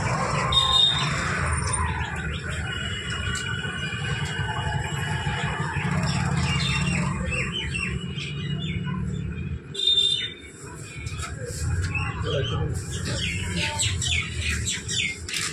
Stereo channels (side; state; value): both; identical; correlation 1.00